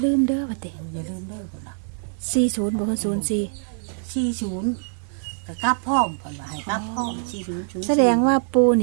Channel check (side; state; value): left; silent; 57 dB below the other